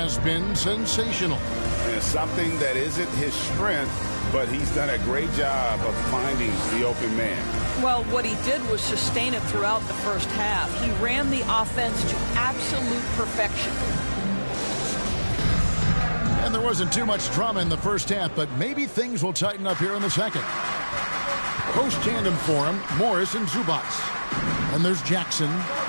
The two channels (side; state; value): both; inverted; correlation -1.00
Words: been sensational. And it's something that isn't his strength, but he's done a great job of finding the open man. Well, what he did was sustain it throughout the first half. He ran the offense to absolute perfection. And there wasn't too much drama in the first half, but maybe things will tighten up here in the second. Post tandem for him, Morris and Zubac. And there's Jackson,